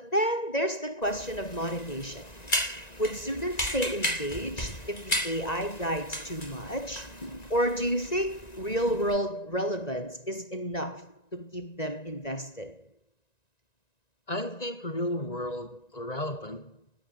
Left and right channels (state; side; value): late; right; 1.9 ms